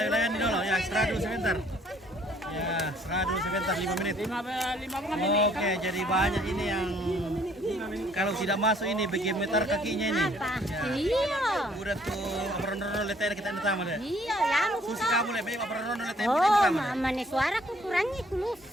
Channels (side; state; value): both; normal; correlation 0.62